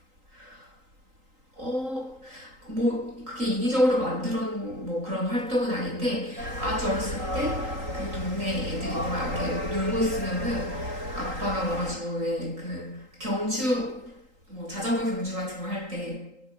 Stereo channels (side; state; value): left; late; 3.8 ms